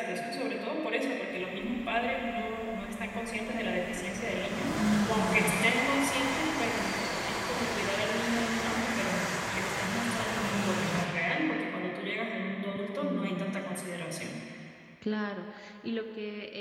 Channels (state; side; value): identical; both; correlation 1.00